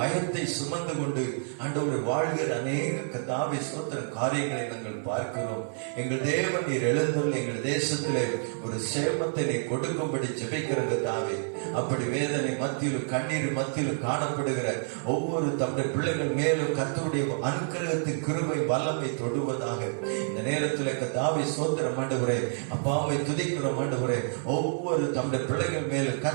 சுமந்து கொண்டு ஆண்டவரை வாழ்கிற அநேக கர்த்தாவே ஸ்தோத்திரம் காரியங்களை நாங்கள் பார்க்கிறோம். எங்கள் தேவன் நீர் எழுந்துள்ள எங்கள் தேசத்திலே ஒரு சேமத்தை நீ கொடுக்கும்படி ஜெபிக்கிற கர்த்தாவே, அப்படி வேதனை மத்தியிலும் கண்ணீர் மத்தியிலும் காணப்படுகிற ஒவ்வொரு தம்முடைய பிள்ளைகள் மேலும் கர்த்தருடைய அனுக்கிரகத்தின் கிருபை வல்லமை தொடுவதாக இந்த நேரத்தில் கர்த்தாவே ஸ்தோத்திரம் ஆண்டவரே, அப்பாவை துதிக்கிறோம் ஆண்டவரே. ஒவ்வொரு தம்முடைய பிள்ளைகள் மேலும்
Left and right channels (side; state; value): left; silent; 59 dB below the other